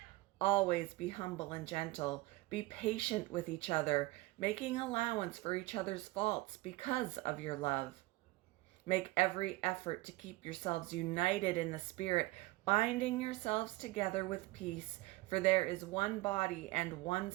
Always be humble and gentle. Be patient with each other, making allowance for each other's faults because of your love. Make every effort to keep yourselves united in the Spirit, binding yourselves together with peace, for there is one body and one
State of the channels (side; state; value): left; quieter; 20.6 dB